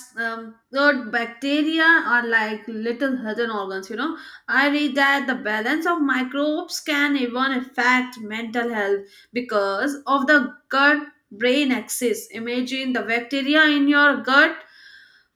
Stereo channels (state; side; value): identical; both; correlation 1.00